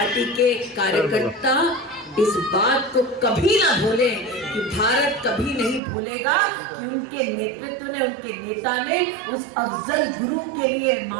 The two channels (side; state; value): left; drops out; at 5.8 s